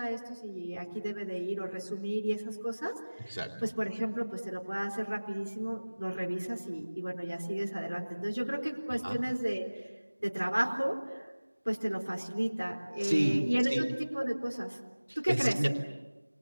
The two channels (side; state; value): both; inverted; correlation -1.00